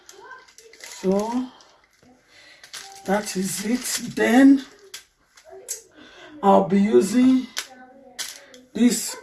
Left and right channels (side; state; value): both; identical; correlation 1.00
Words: So that is it. Then I'll be using this